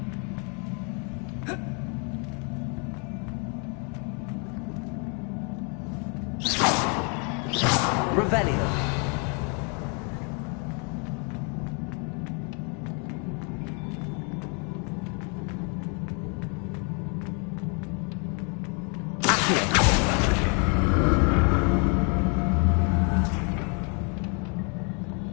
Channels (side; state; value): right; quieter; 36.3 dB